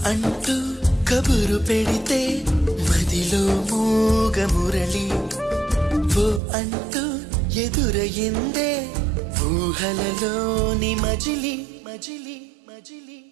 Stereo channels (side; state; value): left; drops out; at 6.4 s